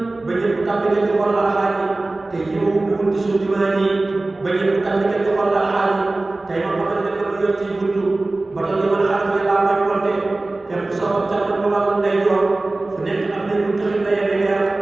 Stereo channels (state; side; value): quieter; left; 3.0 dB